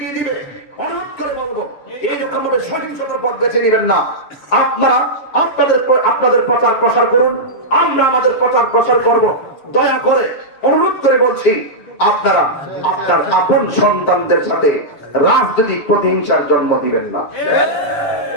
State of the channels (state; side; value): late; right; 7.1 ms